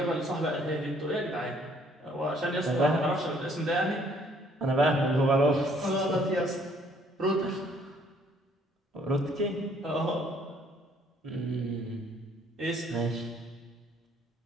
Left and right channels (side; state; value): both; normal; correlation 0.63